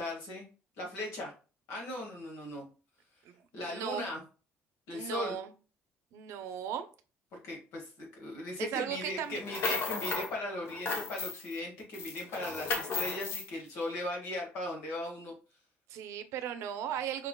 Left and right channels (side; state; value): both; normal; correlation 0.41